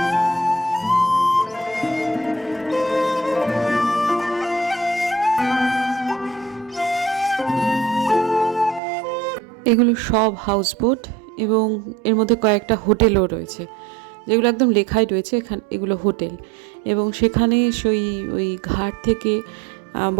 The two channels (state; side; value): drops out; left; at 8.8 s